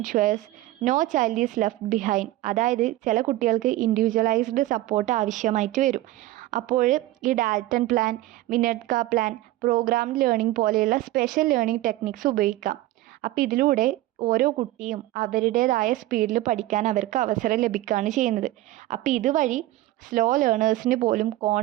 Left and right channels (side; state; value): left; quieter; 16.2 dB